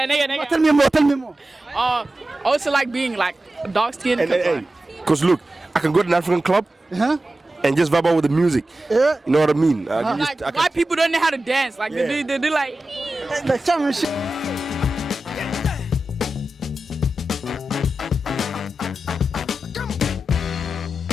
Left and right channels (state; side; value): normal; both; correlation 0.93